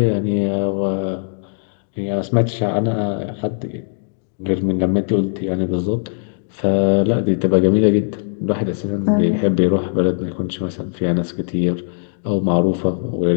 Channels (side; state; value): right; silent; digital silence